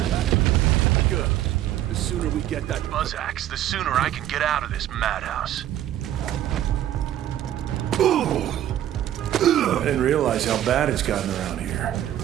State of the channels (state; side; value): quieter; left; 12.2 dB